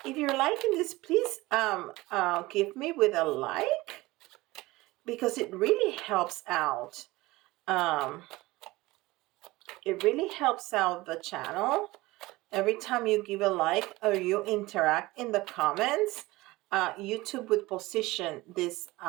If you're liking this, please give me with a like, because it really helps out. It really helps out the channel. Every time you give a like or you interact in the comments, YouTube would position this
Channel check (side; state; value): left; quieter; 20.0 dB